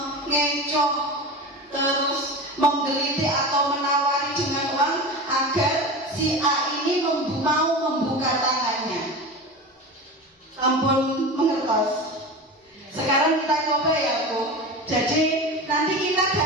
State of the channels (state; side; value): normal; both; correlation 0.28